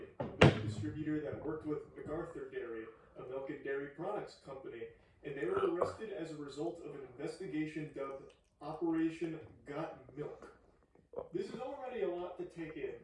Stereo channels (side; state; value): both; identical; correlation 1.00